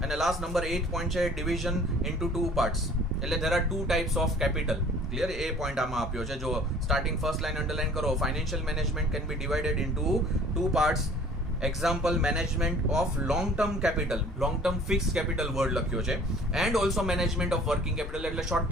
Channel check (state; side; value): normal; both; correlation 0.51